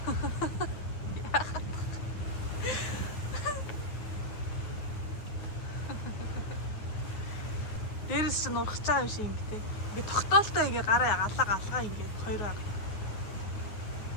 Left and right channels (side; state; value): right; late; 9.5 ms